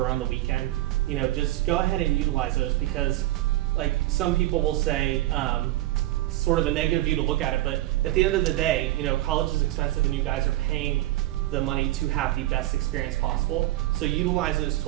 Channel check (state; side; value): quieter; left; 16.5 dB